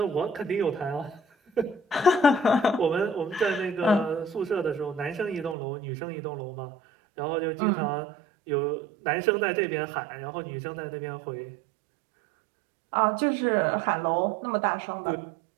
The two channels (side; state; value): left; drops out; at 5.6 s